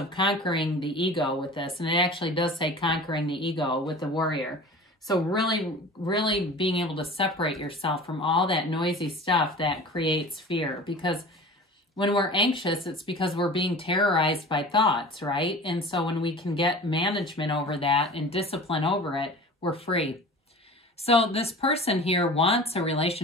conquering the ego with this. And it actually does say conquering the ego with the warrior. So really, really being able to separate yourself from all that noisy stuff that creates fear. Because when we're anxious, it's because we're being terrorized by thoughts, right? And so when we can get management over that and discipline over it, we're free. So this person here wants a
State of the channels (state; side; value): normal; both; correlation 0.39